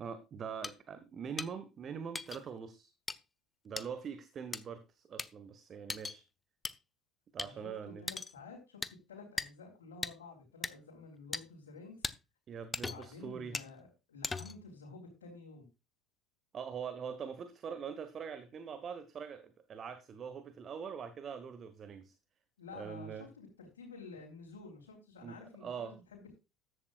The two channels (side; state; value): both; normal; correlation 0.71